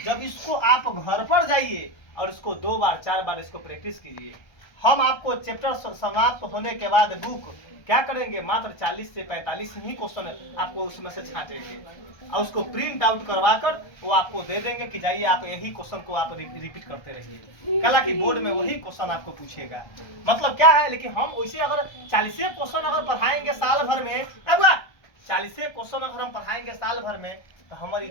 जब इसको आप घर पर जाइए और इसको 2 बार 4 बार इसको प्रैक्टिस कीजिए। हम आपको चैप्टर समाप्त होने के बाद बुक क्या करेंगे, मात्र 40 से 45 ही क्वेश्चन आपको उसमें से छांटेंगे और उसको प्रिंट आउट करवा कर वो आपको दे देंगे कि जाइए आप यही क्वेश्चन को आप रिपीट करते रहिए। कल की बोर्ड में वही क्वेश्चन आपको पूछेगा। मतलब क्या है, लेकिन हम वैसे अगर 40 क्वेश्चन अगर पढ़ाएंगे साल भर में, 40 क्वेश्चन अगर हम पढ़ाएंगे साल भर में तो हमारी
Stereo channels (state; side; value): late; right; 1.3 ms